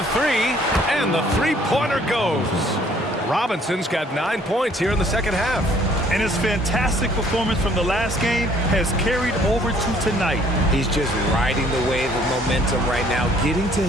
3. And the 3-pointer goes. Robinson's got 9 points here in the second half. And his fantastic performance from the last game has carried over to tonight. He's just riding the wave of momentum right now, getting to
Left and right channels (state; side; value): normal; both; correlation 0.60